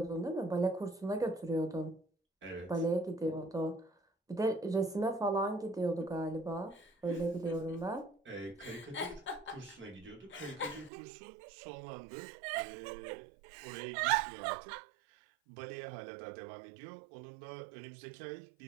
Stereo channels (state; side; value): drops out; left; at 10.9 s